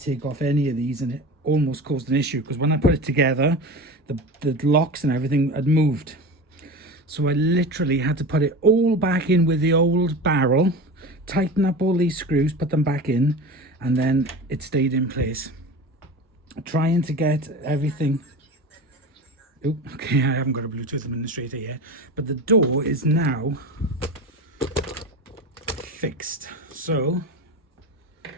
off any of these, and it almost caused an issue because when I put it together, the locks and everything had moved. So I literally had to put it all back in with the old barrel, tighten up all these screws, put them back in, and then it stayed in place. Trying to get everything... Oh, okay, I haven't got a Bluetooth administrator yet, but the door is now fixed. So,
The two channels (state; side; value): normal; both; correlation 0.29